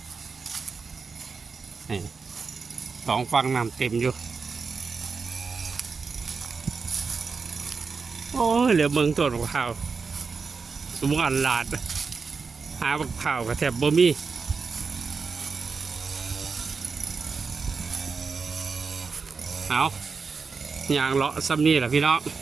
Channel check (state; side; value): quieter; left; 5.0 dB